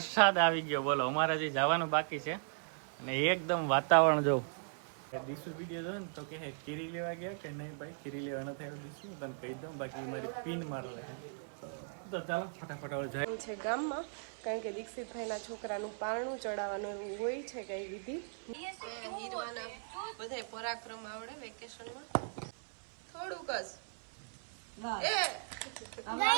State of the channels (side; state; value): left; silent; 53 dB below the other